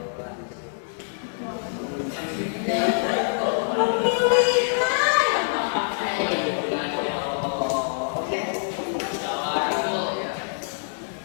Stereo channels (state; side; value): silent; right; digital silence